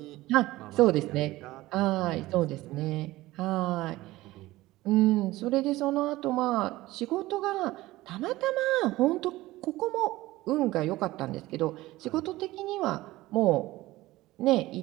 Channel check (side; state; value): left; quieter; 17.9 dB